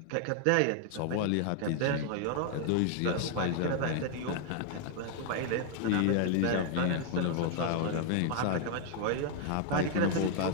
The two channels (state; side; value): different; both; correlation 0.00